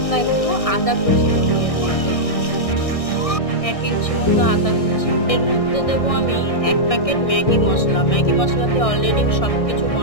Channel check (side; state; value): right; late; 1.6 ms